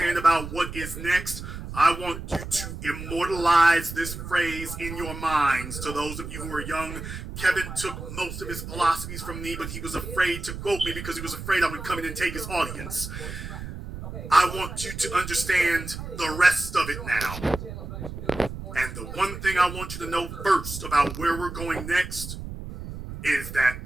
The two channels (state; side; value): noise; right; rumble, 9 dB below the sound